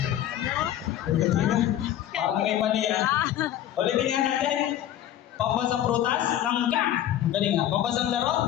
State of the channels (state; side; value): quieter; right; 11.8 dB